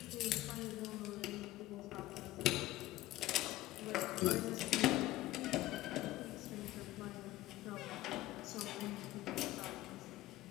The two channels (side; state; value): right; quieter; 16.6 dB